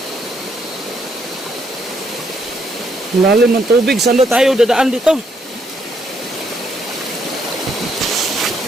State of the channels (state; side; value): normal; both; correlation 0.73